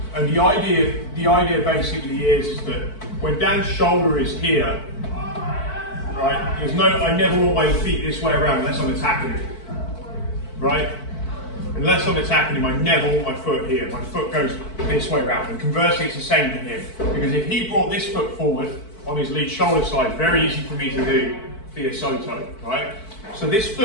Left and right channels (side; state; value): right; late; 4.5 ms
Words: the idea basically is that when Dan's shoulder is here, right, I never want my feet this way around unless I'm attacking him, right? Unless I'm attacking him, I never want my foot here. My foot goes this way around, and conversely, it's the same for him. Because if he brought this foot forward on his lead shoulder side, very easy for me to do via Soto, right? So this